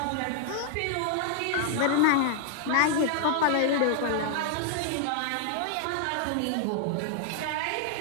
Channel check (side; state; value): both; different; correlation 0.00